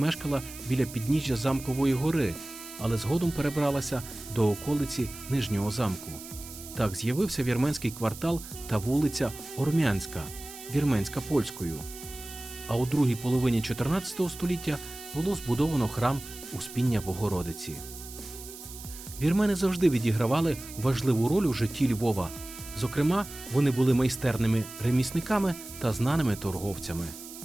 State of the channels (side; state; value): right; noise; hiss, 14 dB below the sound